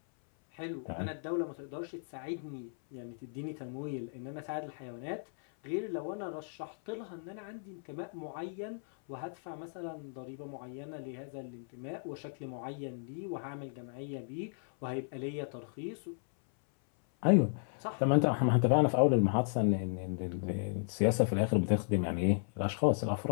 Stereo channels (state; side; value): silent; right; 54 dB below the other